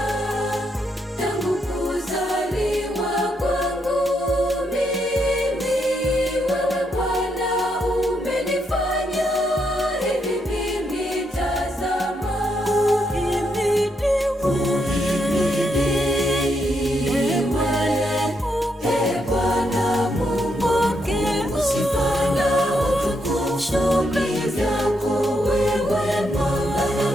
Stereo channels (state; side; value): normal; both; correlation 0.79